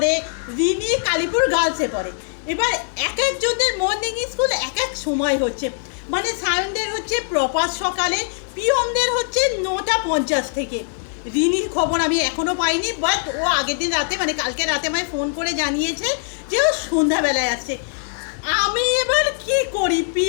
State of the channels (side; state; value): right; silent; 65 dB below the other